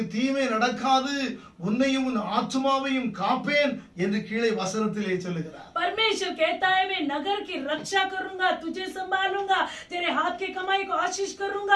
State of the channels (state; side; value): identical; both; correlation 1.00